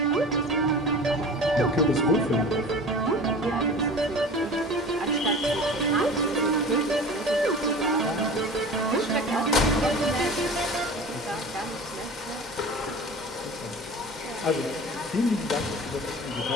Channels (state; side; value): normal; both; correlation 0.38